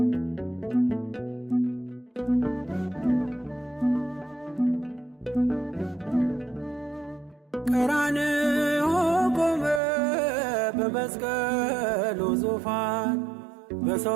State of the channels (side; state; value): left; drops out; at 9.8 s